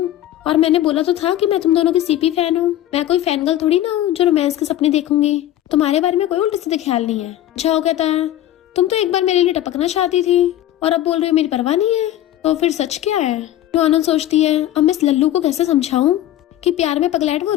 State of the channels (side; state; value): right; quieter; 13.1 dB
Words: और मैंने बोला तो था कि मैं तुम दोनों की सीपी फैन हूँ, मैं कोई फैन गर्ल थोड़ी ना हूँ जो रोमांस के सपने देखूंगी, तुम्हारे बारे में कोई उल्टे सीधे ख्याल नहीं है। झाओ कहता है तुम तो एक बार मेरे लिए टपकना चाहती थी और अब बोल रही हो मेरी परवाह नहीं है, तो फिर सच क्या है। नुआनोन सोचती है अब मैं इस लल्लू को कैसे समझाऊं कि प्यार में पगलैट वो